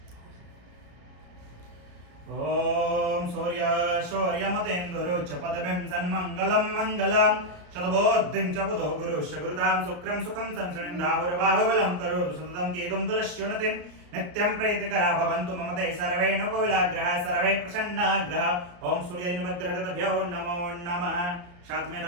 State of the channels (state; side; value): late; left; 34 ms